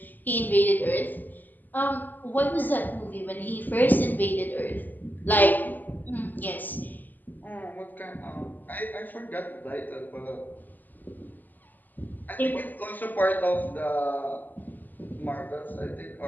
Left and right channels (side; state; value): right; late; 0.086 ms